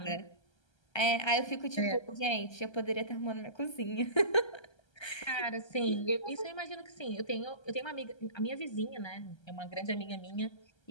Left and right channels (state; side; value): late; right; 1.3 ms